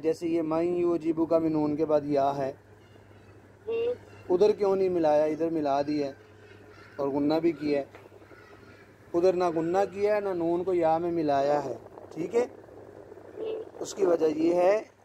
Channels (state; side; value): identical; both; correlation 1.00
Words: ये मैं युअजिबु का भी नून के बाद या है। उधर क्यों नहीं मिलाया, इधर मिला दिया और गुन्ना भी किया है। उधर ना गुन्ना किया है ना नून को या में मिलाया है। ठीक है, उसकी वजह ये है